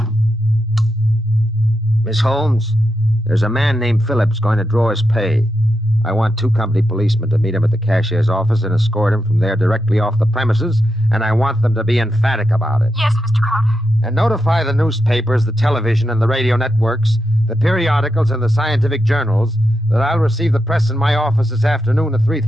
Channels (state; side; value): normal; both; correlation 0.86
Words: Miss Holmes, there's a man named Phillips going to draw his pay. I want 2 company policemen to meet him at the cashier's office and escort him from there directly off the premises, and I want them to be emphatic about it. Yes, Mr. Crowder. And notify the newspapers, the television, and the radio networks, the periodicals, and the scientific journals that I'll receive the press in my office this afternoon at